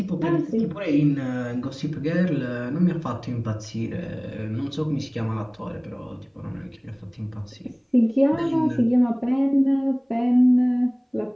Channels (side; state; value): both; identical; correlation 1.00